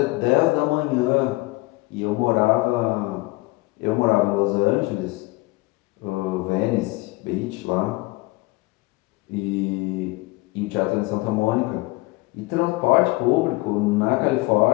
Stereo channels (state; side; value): quieter; right; 22.0 dB